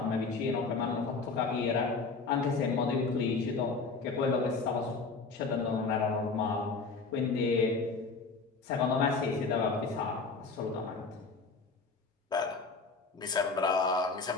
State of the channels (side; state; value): right; quieter; 4.3 dB